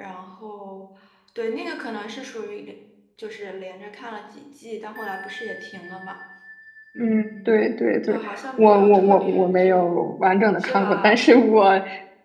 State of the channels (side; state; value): both; identical; correlation 1.00